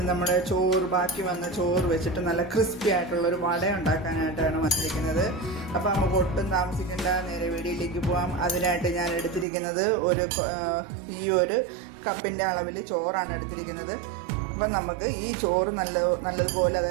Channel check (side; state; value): left; drops out; at 9.5 s